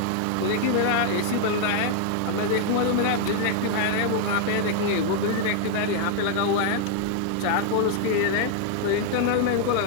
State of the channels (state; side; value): different; both; correlation 0.00